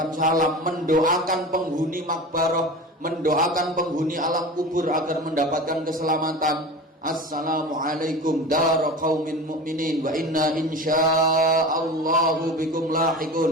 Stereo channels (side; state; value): both; normal; correlation 0.33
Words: salam, mendoakan penghuni makbarah, mendoakan penghuni alam kubur agar mendapatkan keselamatan. Assalamualaikum dar qaumin mu'minin wa inna insyaallahu bikum